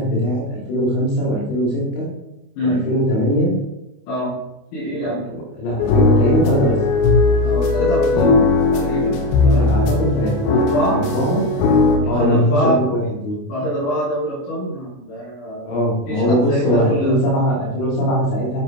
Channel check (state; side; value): late; right; 28 ms